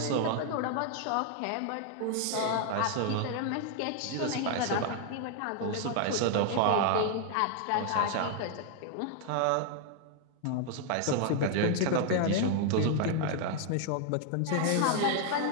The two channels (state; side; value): different; both; correlation 0.00